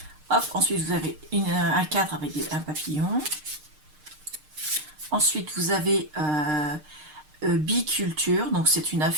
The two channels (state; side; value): late; left; 6.5 ms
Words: Hop, ensuite, vous avez un cadre avec un papillon. Ensuite, vous avez Biculture, donc c'est une